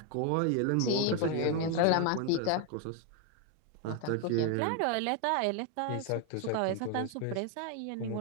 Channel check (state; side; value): different; both; correlation 0.01